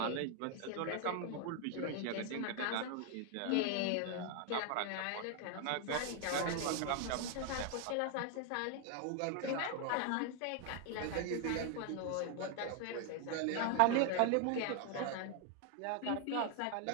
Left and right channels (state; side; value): different; both; correlation 0.00